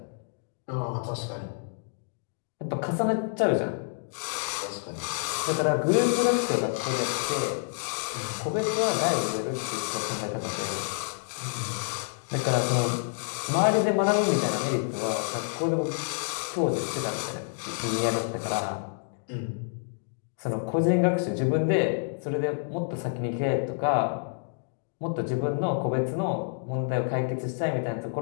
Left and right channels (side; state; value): right; silent; digital silence